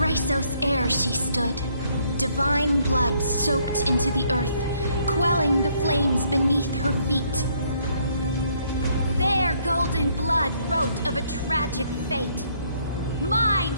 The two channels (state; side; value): inverted; both; correlation -0.67